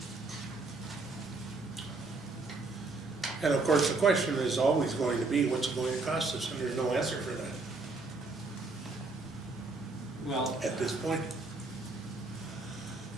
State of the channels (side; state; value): left; quieter; 3.6 dB